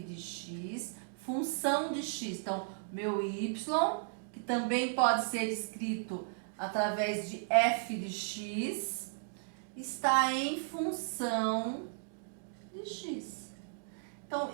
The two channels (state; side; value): silent; left; digital silence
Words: X, função de X. Então, meu Y, que também pode ser escrito através de F de X, está em função de X. Então,